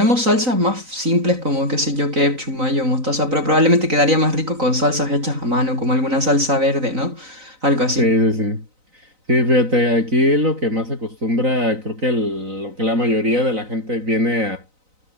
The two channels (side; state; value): left; late; 3.9 ms